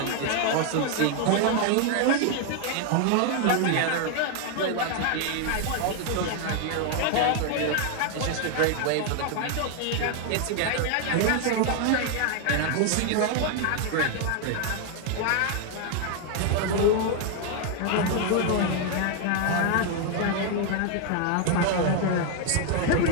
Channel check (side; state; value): both; different; correlation 0.00